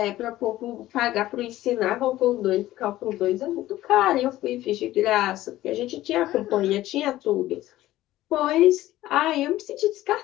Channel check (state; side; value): quieter; right; 15.3 dB